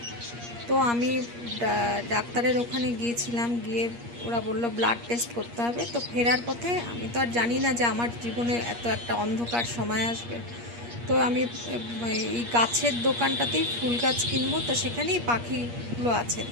তো আমি ডাক্তারের ওখানে গিয়েছিলাম। গিয়ে ওরা বললো ব্লাড টেস্ট করতে হবে। তো ফেরার পথে আমি তো আর জানি না যে আমার জীবনে এত একটা অন্ধকার সময় আসবে। তো আমি এই গাছের দোকানটাতেই ফুল গাছ কিনবো, তো সেখানেই পাখিগুলো আছে,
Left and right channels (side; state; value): left; late; 8.5 ms